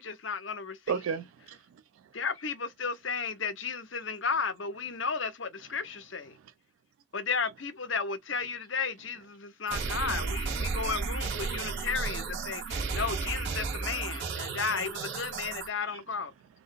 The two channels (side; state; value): both; normal; correlation 0.14